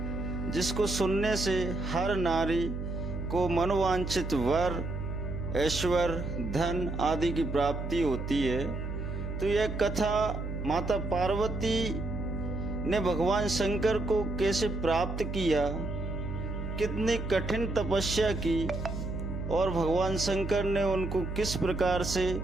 जिसको सुनने से हर नारी को मनोवांछित वर, ऐश्वर्य, धन आदि की प्राप्ति होती है। तो यह कथा माता पार्वती ने भगवान शंकर को कैसे प्राप्त किया, कितनी कठिन तपस्या की और भगवान शंकर ने उनको किस प्रकार से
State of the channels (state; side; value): noise; right; hum, 5 dB below the sound